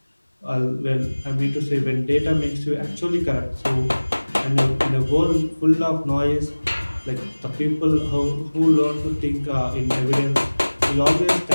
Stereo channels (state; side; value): inverted; both; correlation -1.00